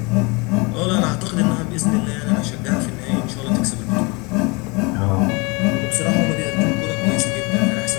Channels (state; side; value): quieter; right; 27.9 dB